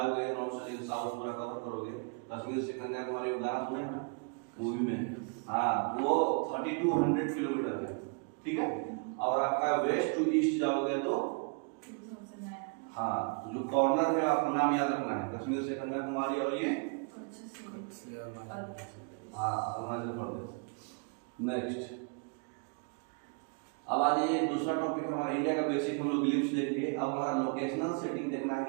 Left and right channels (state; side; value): quieter; left; 37.5 dB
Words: नॉर्थ से लेके साउथ पूरा कवर करोगे, कश्मीर से कन्याकुमारी गाना सुने ना मूवी में, हाँ, वो 3200 किलोमीटर है, ठीक है। और आपका वेस्ट टू ईस्ट जाओगे तो हाँ, जो कॉर्नर है आपको नाम याद रखना है, कश्मीर से कन्याकुमारी और ये हाँ अरुणाचल प्रदेश। नेक्स्ट, अब आ जाइए दूसरा टॉपिक हमारा इंडिया का बेसिक हम लोग ग्लिम्स देख लिए। अब हमारा लोकेशनल सेटिंग देखना है